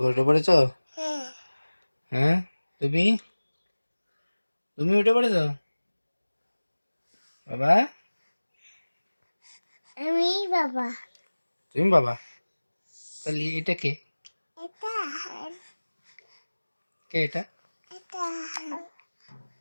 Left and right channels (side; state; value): both; inverted; correlation -1.00